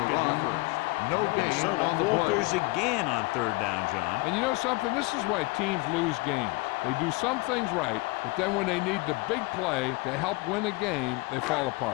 get the first. No gain Minnesota on the falters play. again on third down, John. And you know something? This is why teams lose games. They do some things right, but then when they need the big play to help win a game, they fall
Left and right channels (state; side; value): quieter; right; 24.7 dB